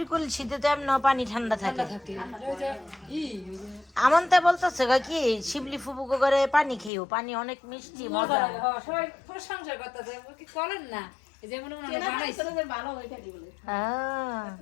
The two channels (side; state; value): right; drops out; at 6.9 s